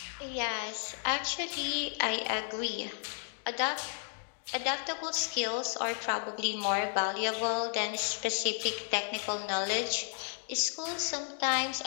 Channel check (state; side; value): silent; right; digital silence